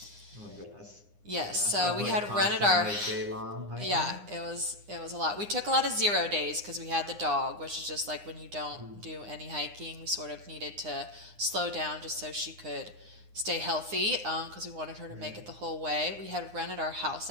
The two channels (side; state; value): left; late; 9.8 ms